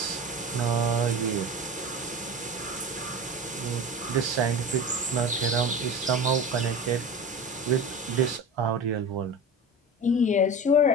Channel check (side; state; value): both; normal; correlation 0.31